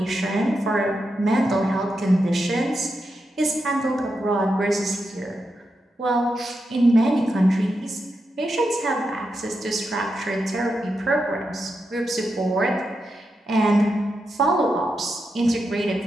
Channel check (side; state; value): both; normal; correlation 0.86